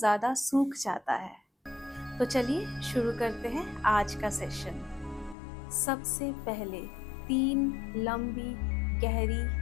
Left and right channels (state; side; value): drops out; right; at 5.4 s